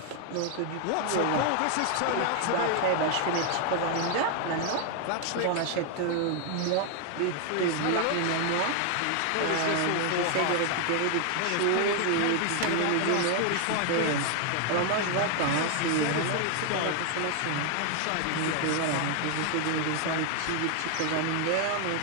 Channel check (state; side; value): different; both; correlation 0.00